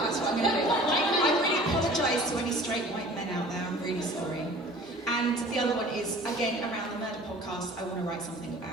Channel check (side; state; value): both; normal; correlation 0.46